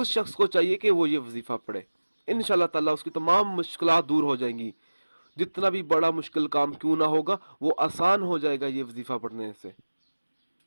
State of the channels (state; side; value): inverted; both; correlation -1.00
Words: शख्स को चाहिए कि वो ये वजीफ़ा पढ़े। इंशाअल्लाह ताला उसकी तमाम मुश्किलात दूर हो जाएंगी। जितना भी बड़ा मुश्किल काम क्यों ना होगा, वो आसान हो जाएगा ये वजीफ़ा पढ़ने से।